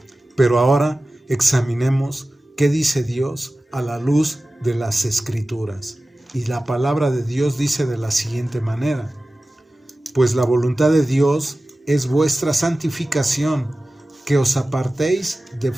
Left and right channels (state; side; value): normal; both; correlation 0.96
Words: Pero ahora examinemos qué dice Dios a la luz de las Escrituras. Y la palabra de Dios dice de la siguiente manera: pues la voluntad de Dios es vuestra santificación, que os apartéis de